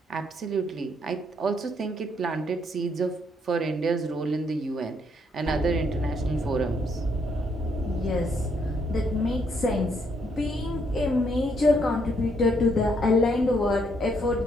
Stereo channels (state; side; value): normal; both; correlation 0.72